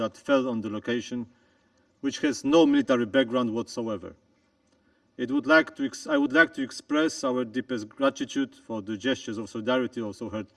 fell on the location, which has no military background whatsoever. I would like to express our deepest gratitude for the gestures of solidarity also heard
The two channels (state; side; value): identical; both; correlation 1.00